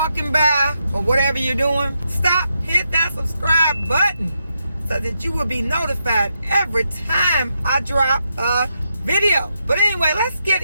by or whatever you're doing, stop, hit that subscribe button so that you will be notified every time I drop a video. But anyway, let's get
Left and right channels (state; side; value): inverted; both; correlation -0.83